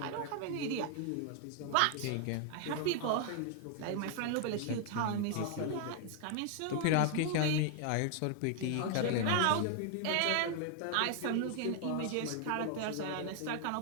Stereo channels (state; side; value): different; both; correlation 0.00